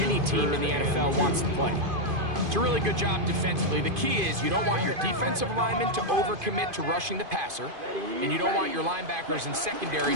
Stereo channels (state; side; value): late; left; 2.5 ms